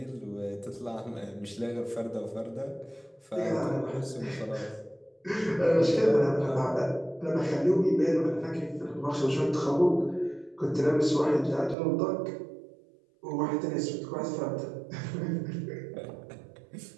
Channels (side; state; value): left; drops out; at 11.8 s